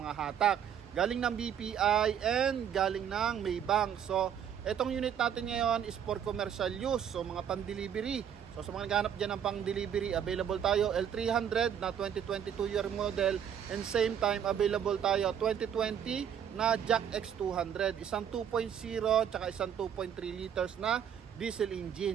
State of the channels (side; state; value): left; quieter; 8.9 dB